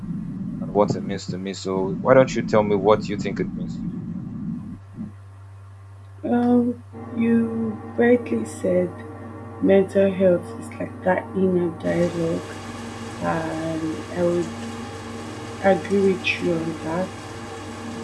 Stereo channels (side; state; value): both; identical; correlation 1.00